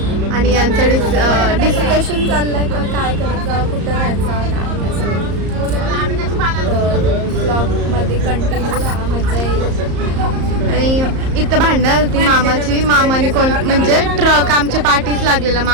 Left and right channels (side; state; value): left; late; 34 ms